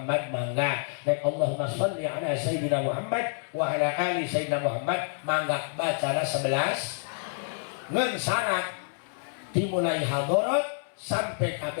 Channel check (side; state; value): right; silent; 59 dB below the other